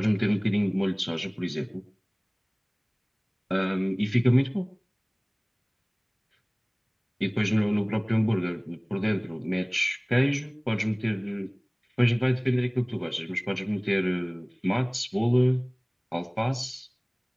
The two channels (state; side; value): identical; both; correlation 1.00